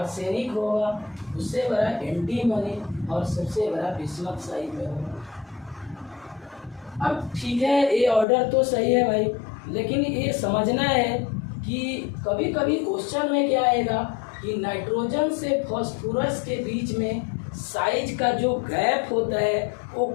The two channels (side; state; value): right; drops out; at 8.2 s